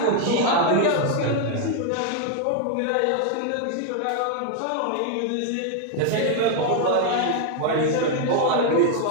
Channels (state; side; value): different; both; correlation 0.00